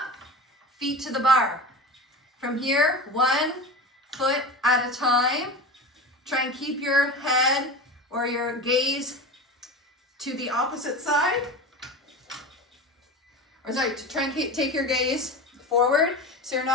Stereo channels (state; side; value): normal; both; correlation 0.29